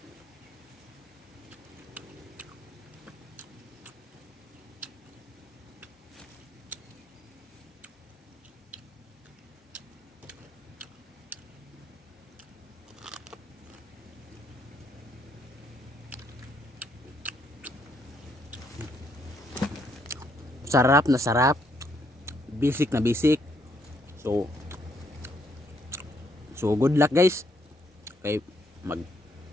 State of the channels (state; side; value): normal; both; correlation 0.72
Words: Sarap na sarap. Basic na basic. So good luck guys. Kay